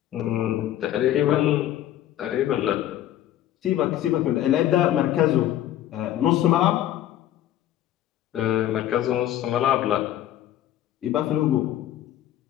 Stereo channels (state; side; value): quieter; right; 12.5 dB